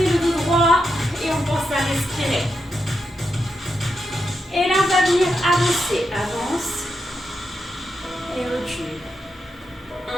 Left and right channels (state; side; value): normal; both; correlation 0.84